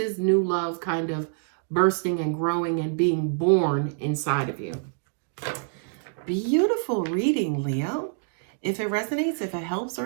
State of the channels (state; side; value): silent; left; digital silence